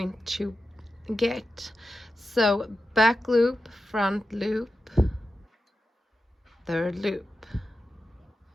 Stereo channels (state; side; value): normal; both; correlation 0.91